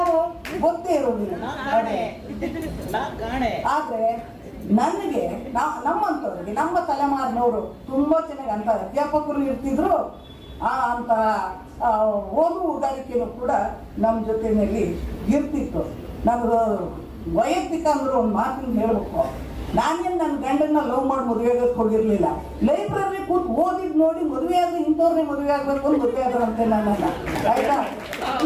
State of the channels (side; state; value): both; identical; correlation 1.00